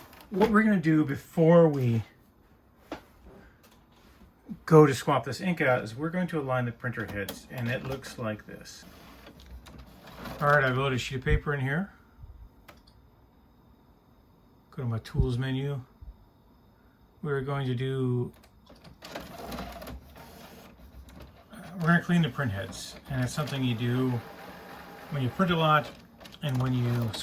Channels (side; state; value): both; identical; correlation 1.00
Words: what we're going to do before we go to swap this ink out is we're going to align the printer heads, and it looks like this. Alright, I've loaded a sheet of paper in here. Go to my tools menu. We're going to clean the print heads, and it's something you do when you print a lot and when you